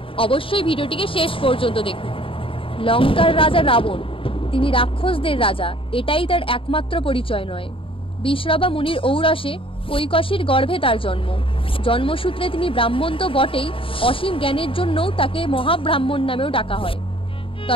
অবশ্যই ভিডিওটিকে শেষ পর্যন্ত দেখুন। লঙ্কার রাজা রাবণ, তিনি রাক্ষসদের রাজা, এটাই তার একমাত্র পরিচয় নয়। বিশ্রবা মুনির ঔরসে কৈকসীর গর্ভে তার জন্ম। জন্মসূত্রে তিনি ব্রাহ্মণ তো বটেই, অসীম জ্ঞানের জন্যও তাকে মহাব্রাহ্মণ নামেও ডাকা হয়।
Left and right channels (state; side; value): late; right; 0.26 ms